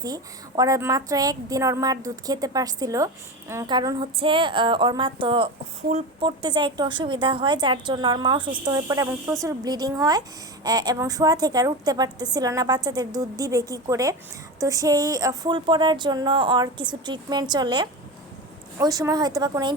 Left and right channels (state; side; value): normal; both; correlation 0.23